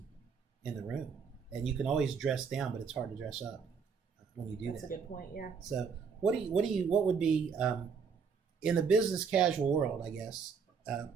in the room. And you can always dress down, but it's hard to dress up when you do that. That's a good point, yeah. So what would be, in the business casual world, I guess,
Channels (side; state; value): left; quieter; 6.0 dB